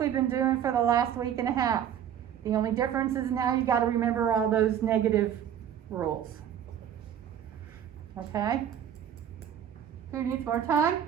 been doing for the last week and a half. The only difference is now you got to remember all those negative rules. Okay? Who needs more time?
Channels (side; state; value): left; quieter; 9.6 dB